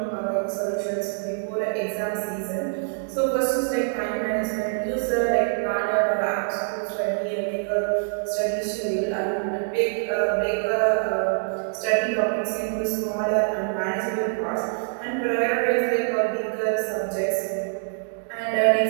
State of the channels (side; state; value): left; silent; digital silence